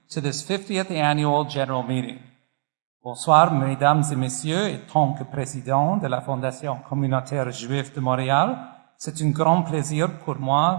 to this 50th annual general meeting. Bonsoir, mesdames et messieurs, et tant que président de la Fondation communautaire juive de Montréal, c'est un grand plaisir pour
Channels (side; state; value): left; silent; digital silence